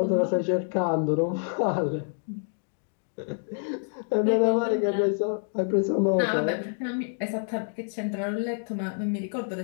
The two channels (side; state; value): right; silent; digital silence